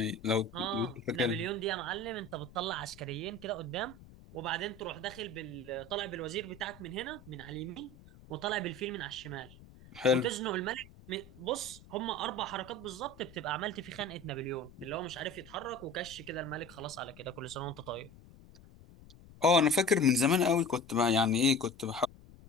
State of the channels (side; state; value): left; noise; rumble, 21 dB below the sound